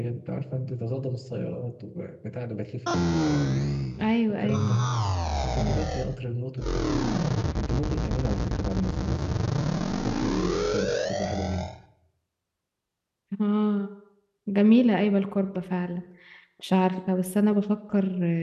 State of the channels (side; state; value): both; identical; correlation 1.00